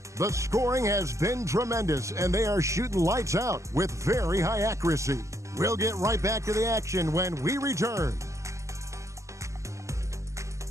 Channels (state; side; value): late; left; 0.15 ms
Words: The scoring has been tremendous, and they are shooting lights out with very high accuracy. We'll get right back to the action when we return.